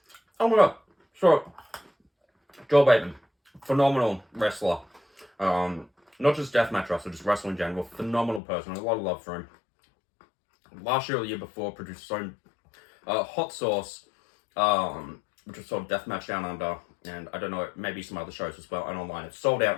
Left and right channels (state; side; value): drops out; right; at 8.4 s